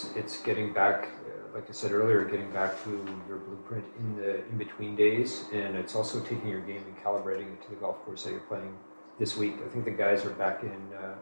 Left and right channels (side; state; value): both; inverted; correlation -1.00